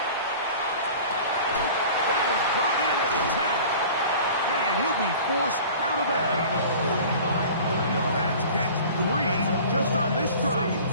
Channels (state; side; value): inverted; both; correlation -0.42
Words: That is brought in at the 10. And he'll be forced out of bounds. That's catch 3 just on this